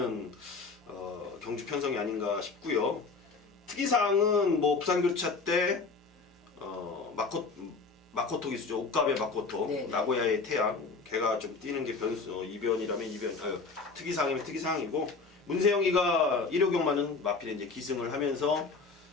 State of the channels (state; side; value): quieter; right; 4.4 dB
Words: 경주 편성이 아닌가 싶고요. 특이사항은 뭐 부산교차 때 마코토 기수죠. 옥갑의 마코토, 나고야의 태양, 걔가 좀 뛰는 게 이변이라면 이변, 특이사항이면 특이사항이고, 문세영이가 일요경마는 마필에 이제 기승을 하면서